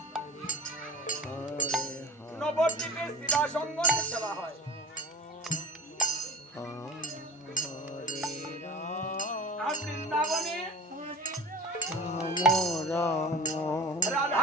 নবদ্বীপে শিবা সঙ্গমে সেবা হয়। আর বৃন্দাবনে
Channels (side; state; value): both; normal; correlation 0.37